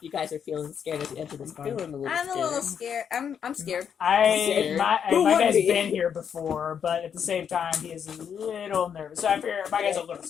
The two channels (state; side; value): quieter; right; 7.8 dB